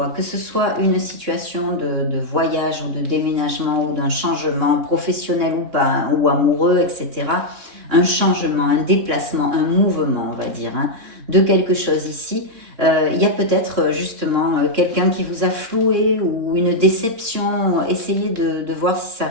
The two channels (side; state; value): left; late; 3.6 ms